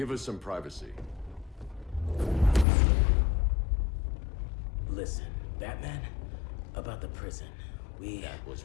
us some privacy. Listen, Batman, about the prison, That was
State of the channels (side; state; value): right; drops out; at 2.7 s